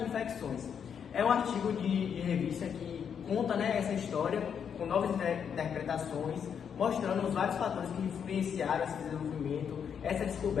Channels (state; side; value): quieter; right; 7.6 dB